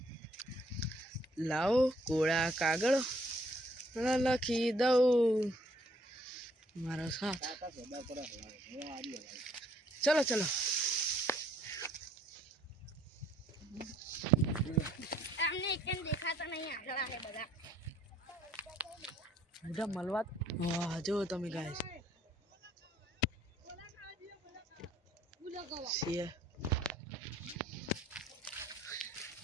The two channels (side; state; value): both; normal; correlation 0.64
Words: લાવો કોળા કાગળ લખી દઉં મારો સાથ ચલો ચલો તમને કેમ દેખાતા નહીં આગળ આવે બધા બધા મળવા વાહ જો તમે ગાય છે